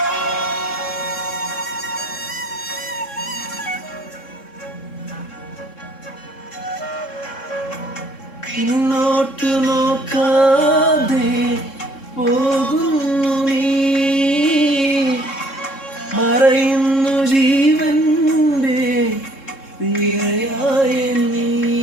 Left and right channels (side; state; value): right; late; 3.7 ms